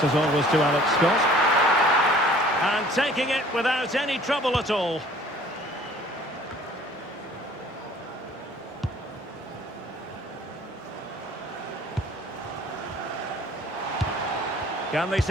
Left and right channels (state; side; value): normal; both; correlation 0.52